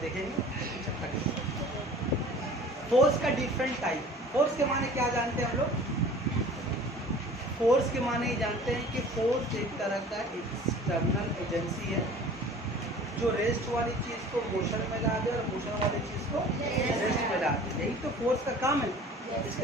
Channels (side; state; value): both; normal; correlation 0.45